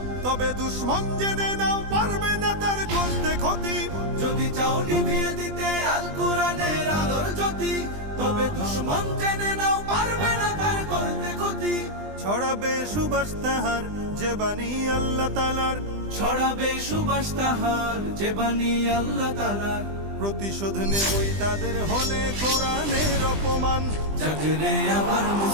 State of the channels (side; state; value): left; late; 20 ms